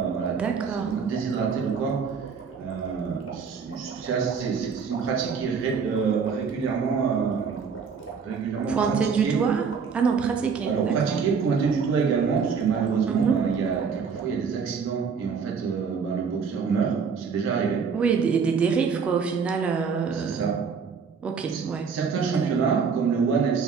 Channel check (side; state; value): left; quieter; 5.9 dB